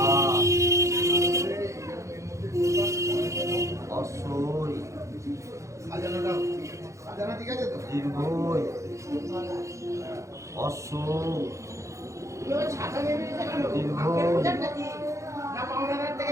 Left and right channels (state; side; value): late; left; 0.15 ms